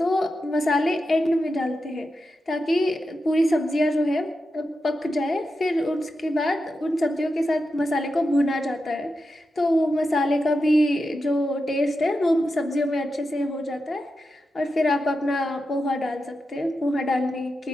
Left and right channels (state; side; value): normal; both; correlation 0.89